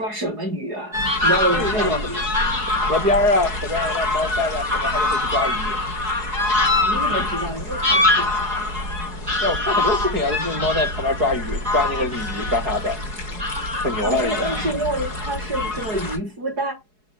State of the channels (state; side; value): late; left; 4.7 ms